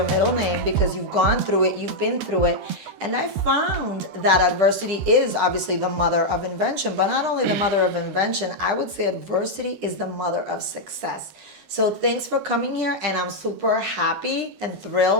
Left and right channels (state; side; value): late; left; 13 ms